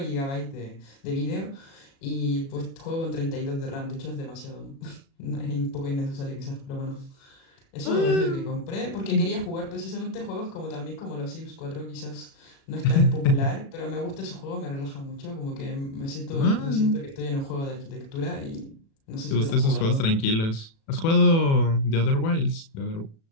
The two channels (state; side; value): late; right; 36 ms